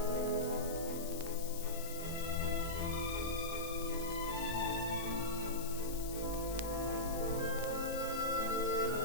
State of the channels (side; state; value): left; noise; hiss, 10 dB below the sound